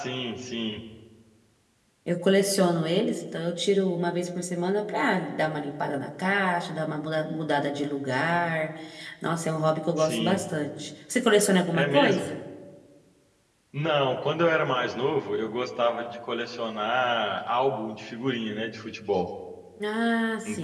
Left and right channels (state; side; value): identical; both; correlation 1.00